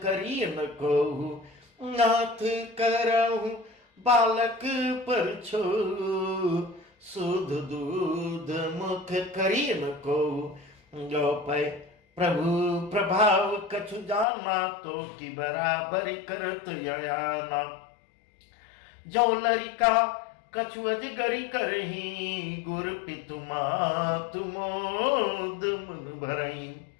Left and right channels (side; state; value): right; drops out; at 14.2 s